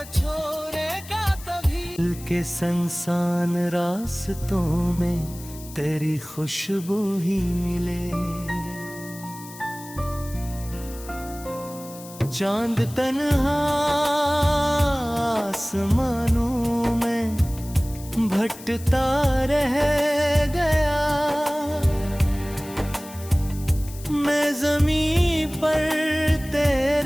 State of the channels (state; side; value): noise; left; hiss, 17 dB below the sound